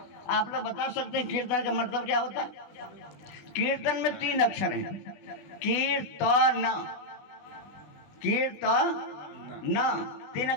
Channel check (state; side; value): late; right; 20 ms